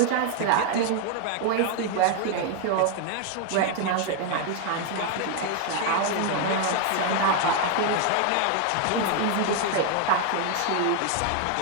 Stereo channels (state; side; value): different; both; correlation 0.01